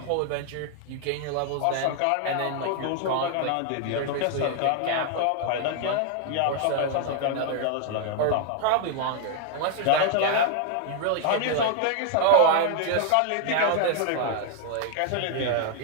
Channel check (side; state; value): both; different; correlation 0.00